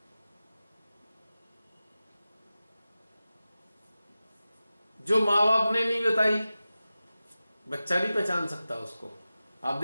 जो माँ बाप ने नहीं बताई, बच्चा नहीं पहचान सकता उसको। आप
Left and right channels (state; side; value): inverted; both; correlation -0.95